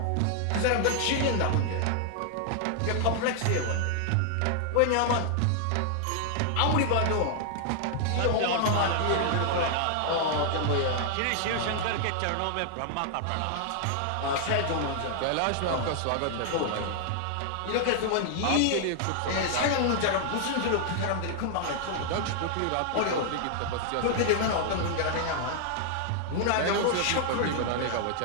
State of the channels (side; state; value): both; different; correlation -0.01